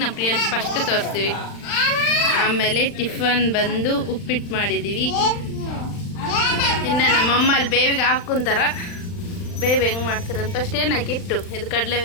ನಮ್ಮ ಪ್ರಿಯ ಫಸ್ಟ್ ತೋರಿಸ್ತೀವಿ. ಆಮೇಲೆ ಟಿಫನ್ ಬಂದು ಉಪ್ಪಿಟ್ಟು ಮಾಡಿದ್ದೀವಿ. ಇನ್ನು ನಮ್ಮಮ್ಮ ಅಲ್ಲಿ ಬೇವಿಗೆ ಹಾಕ್ಕೊಂತಾರ. ಬೇವು ಹೆಂಗೆ ಮಾಡ್ತಾರಂತ ಫಸ್ಟ್ ಏನು ಹಾಕಿಟ್ಟು, ಇದು ಕಡಲೆ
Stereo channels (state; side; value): late; right; 39 ms